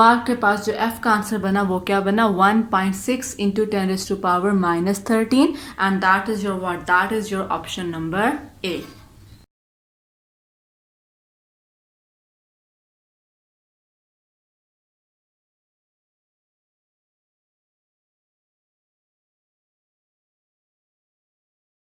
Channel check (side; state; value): both; identical; correlation 1.00